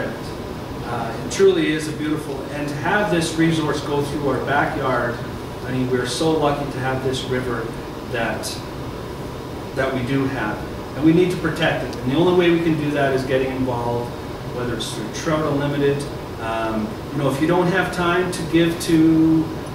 it. It truly is a beautiful, and to have this resource go through our backyard, I mean, we're so lucky to have this river that we do have. And we need to protect it. And the only way we can do that is getting involved, whether it's through Trout Unlimited. You know, if you don't have time to give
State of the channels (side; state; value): both; identical; correlation 1.00